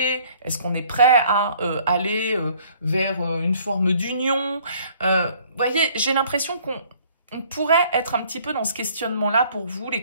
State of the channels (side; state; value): both; inverted; correlation -0.58